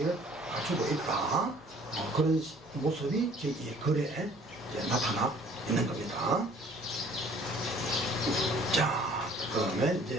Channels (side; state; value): left; noise; hum, 26 dB below the sound